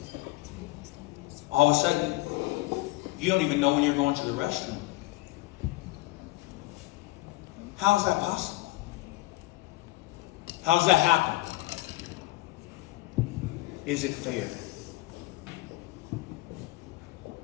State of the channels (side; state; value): right; quieter; 19.6 dB